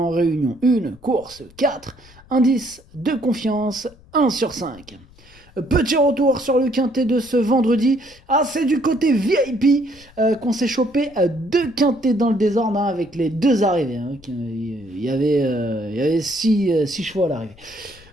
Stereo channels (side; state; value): left; noise; rumble, 26 dB below the sound